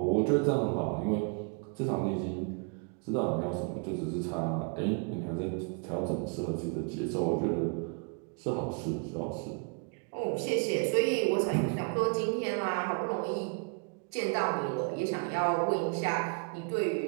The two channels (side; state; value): left; quieter; 35.8 dB